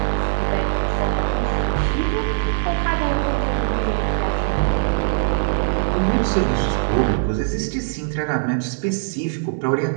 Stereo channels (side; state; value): left; silent; digital silence